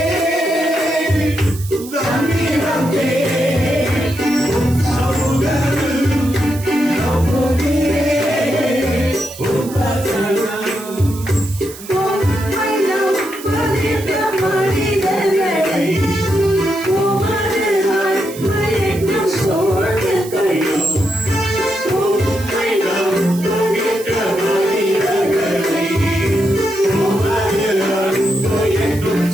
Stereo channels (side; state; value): right; noise; hiss, 15 dB below the sound